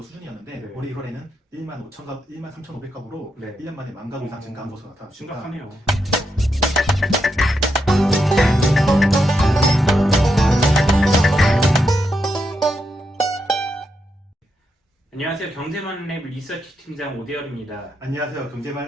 수준이었는데 네. 올해 1월에는 13,500가구로 네. 1년 만에 10,000가구 이상 증가한 것으로 나타났습니다. 심각하네요. 안녕하세요. 경제만랩 리서치 팀장 오대열입니다. 안녕하세요.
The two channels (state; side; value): normal; both; correlation 0.83